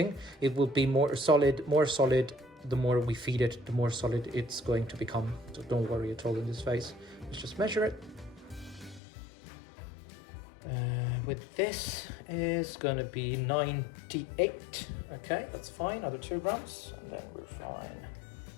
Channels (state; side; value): drops out; right; at 9.0 s